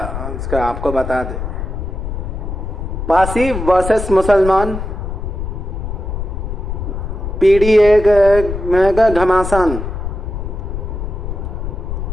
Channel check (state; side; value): noise; left; rumble, 5 dB below the sound